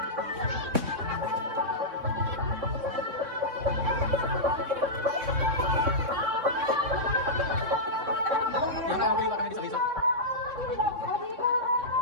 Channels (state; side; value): late; left; 3.6 ms